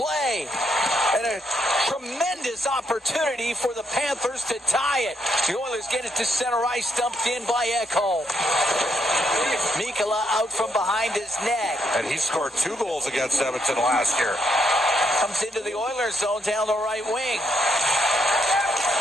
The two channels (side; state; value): both; normal; correlation 0.76